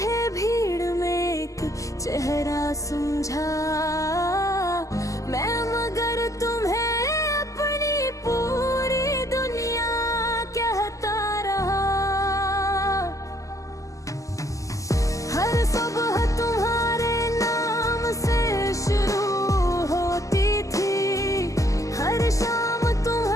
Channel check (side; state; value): right; late; 0.16 ms